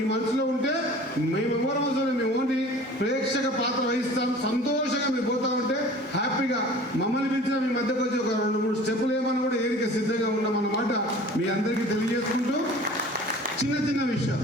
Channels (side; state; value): both; normal; correlation 0.44